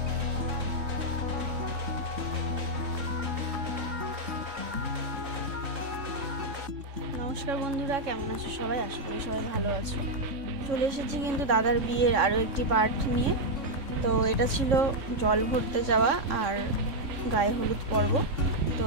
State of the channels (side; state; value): left; late; 3.6 ms